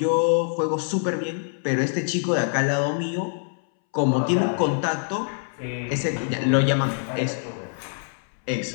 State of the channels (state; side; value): silent; right; 62 dB below the other